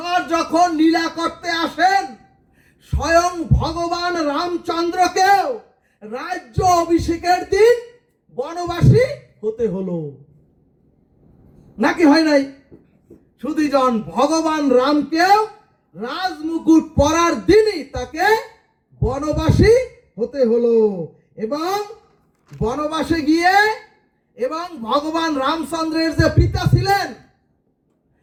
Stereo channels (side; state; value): both; identical; correlation 1.00